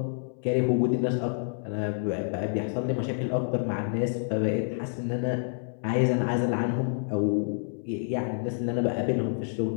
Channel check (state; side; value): silent; right; 59 dB below the other